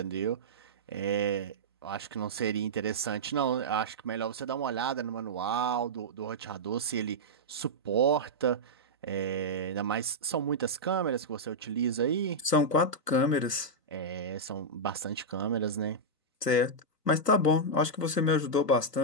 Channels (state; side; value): normal; both; correlation -0.07